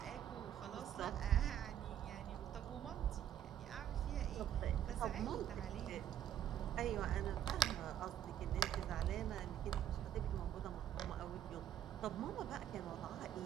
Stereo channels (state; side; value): quieter; left; 10.5 dB